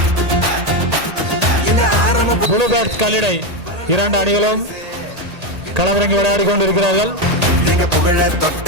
ப்ளூ பேர்ட்ஸ் கல்லிடை 2 அணிகளும் களமிறங்கி விளையாடி கொண்டிருக்கிறார்கள்.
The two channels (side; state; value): left; late; 1.8 ms